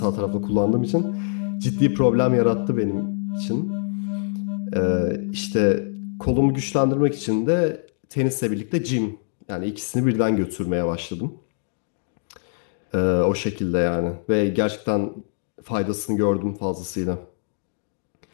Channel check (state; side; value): silent; right; digital silence